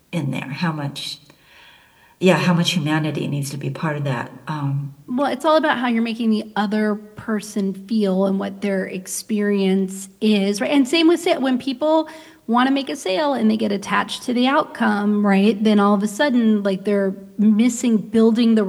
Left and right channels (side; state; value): both; identical; correlation 1.00